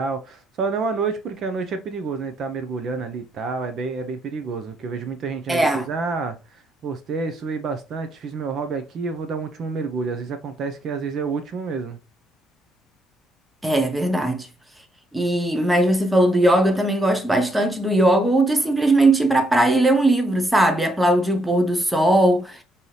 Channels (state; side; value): normal; both; correlation 0.76